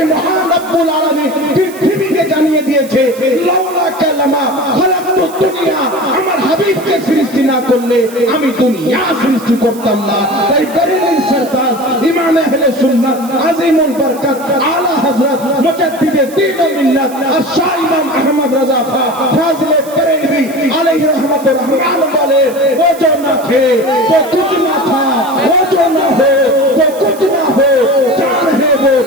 মহান রব্বুল আলামিন পৃথিবীকে জানিয়ে দিয়েছে, লাউলা কালামা খালাকতুদ দুনিয়া, আমার হাবিবকে সৃষ্টি না করলে আমি দুনিয়া সৃষ্টি করতাম না। তাই বেরেলভী সরকার ইমাম আহলে সুন্নাত আজিমুল বরকত আলা হযরত মুজাদ্দিদে দ্বীন ও মিল্লাত আর শাহ ইমাম আহমদ রাজা খান ফাজিলে বেরেলভী আলাইহি রহমতুর রহমান বলে, वो जो ना थे तो कुछ ना था, वो जो ना हो तो कुछ ना हो, जान है वो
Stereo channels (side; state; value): right; noise; hiss, 18 dB below the sound